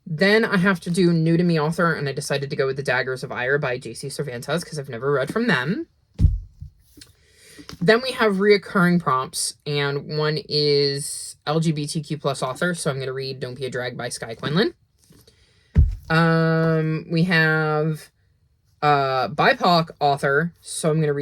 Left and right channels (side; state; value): both; identical; correlation 1.00